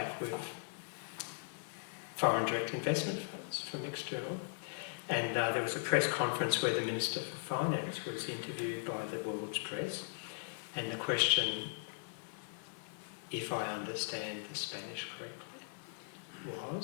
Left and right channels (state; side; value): silent; right; 52 dB below the other